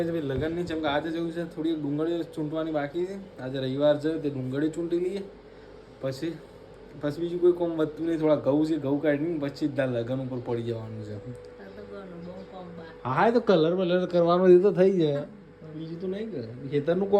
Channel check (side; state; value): both; identical; correlation 1.00